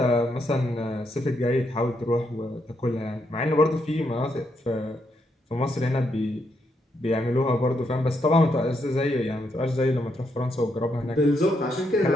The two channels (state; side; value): normal; both; correlation 0.78